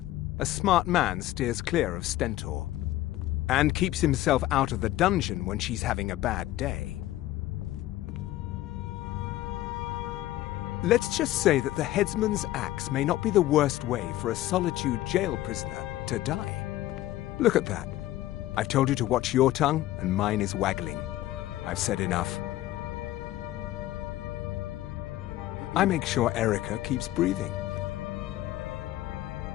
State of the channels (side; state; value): right; quieter; 15.2 dB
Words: A smart man steers clear of Stentor. And keeps himself out of the dungeon when she's having a bad day. Let's just say that the headsman's axe may not be the worst way for a Solitude jail prisoner to die. Look at that. I've told you to watch your tongue, and mine is waggling. I've said enough. I make sure Erica keeps breathing.